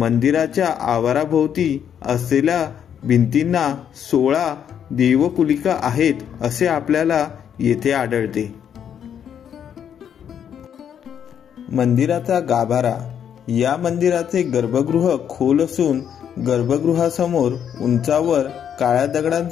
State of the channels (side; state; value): right; quieter; 8.7 dB